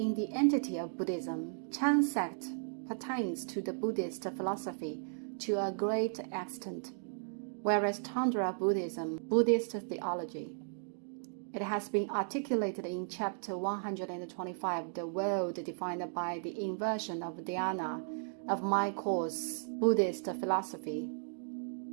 the entity of Buddhism, Chan sect pertains to the Buddhist philosophy to a great extent, whereas Tantra Buddhism, Buddhist theology. It has been articulated in chapter 125, the world defined by the inversion of dhyana, of my course, Buddhist philosophy,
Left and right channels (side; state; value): left; silent; digital silence